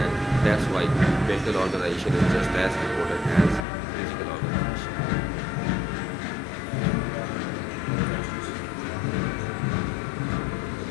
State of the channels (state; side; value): drops out; right; at 3.7 s